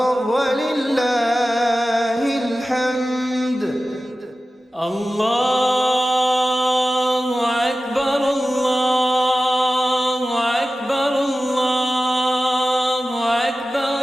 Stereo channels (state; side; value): normal; both; correlation 0.95